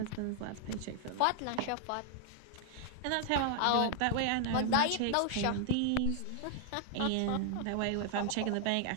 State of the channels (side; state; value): both; different; correlation 0.00